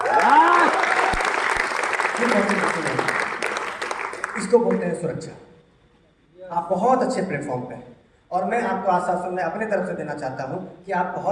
इसको बोलते हैं सुरक्षा। आप बहुत अच्छे प्लेटफॉर्म पे हैं, और मैं आपको आश्वासन मैं अपने तरफ से देना चाहता हूं कि आप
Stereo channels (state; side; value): identical; both; correlation 1.00